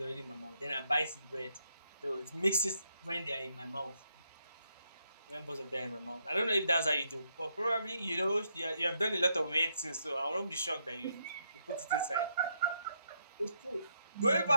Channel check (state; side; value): inverted; both; correlation -0.78